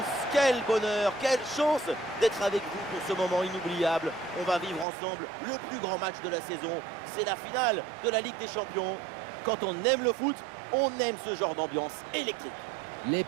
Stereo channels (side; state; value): left; drops out; at 4.9 s